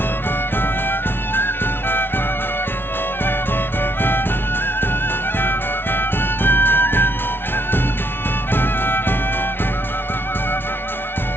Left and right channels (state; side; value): late; right; 0.11 ms